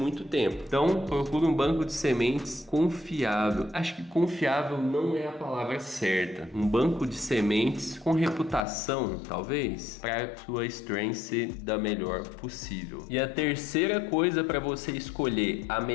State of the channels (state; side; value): drops out; right; at 8.7 s